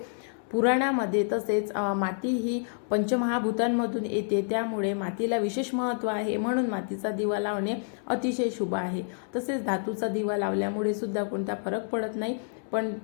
पुराणामध्ये। तसेच माती ही पंचमहाभूतांमधून येते, त्यामुळे मातीला विशेष महत्त्व आहे, म्हणून मातीचा दिवा लावणे अतिशय शुभ आहे। तसेच धातूचा दिवा लावल्यामुळे सुद्धा कोणता फरक पडत नाही, पण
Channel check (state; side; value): silent; right; 59 dB below the other